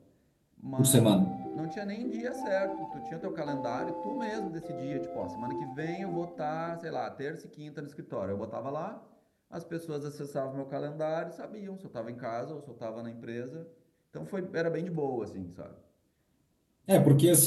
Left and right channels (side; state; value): both; identical; correlation 1.00